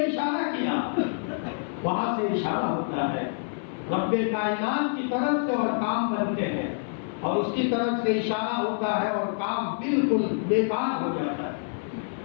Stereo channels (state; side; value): silent; right; 57 dB below the other